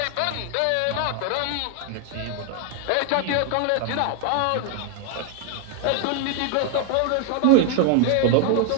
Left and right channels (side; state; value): both; different; correlation 0.00